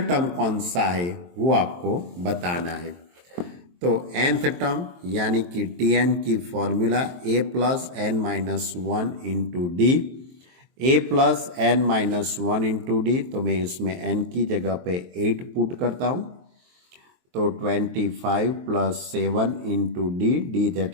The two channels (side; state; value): left; late; 23 ms